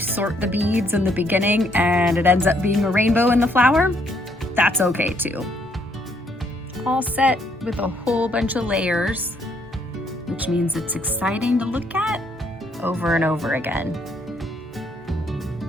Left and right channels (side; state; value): both; normal; correlation 0.70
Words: the beads in the beginning and it ends up being a rainbow in the flower, that's okay too. All set with a whole bunch of layers, which means it's exciting to look at over and over again.